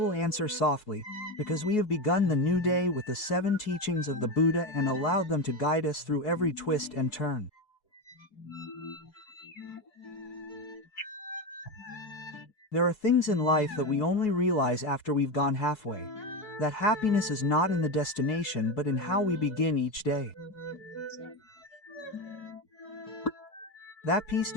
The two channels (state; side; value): late; right; 4.7 ms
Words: answer softly, because we have begun the new day with the 7 teachings of the Buddha and allowed them to guide us through every twist and turn. There are things in life that we only realize after we've gone halfway. That happiness is not in the destination but in how we begin each day. That peace